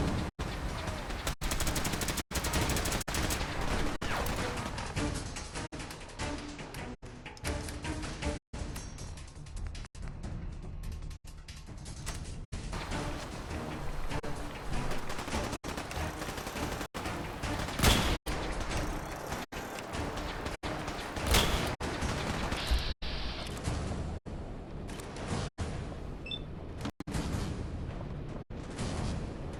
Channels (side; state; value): both; identical; correlation 1.00